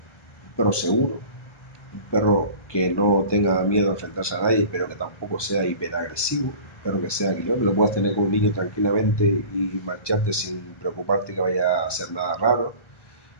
perro seguro, un perro que no tenga miedo a enfrentarse a nadie, pero que tampoco sea hiperagresivo, pero que sea que lo puedas tener con un niño tranquilamente y marcharte sin preocuparte que vaya a hacer nada raro,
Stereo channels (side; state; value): right; late; 1.3 ms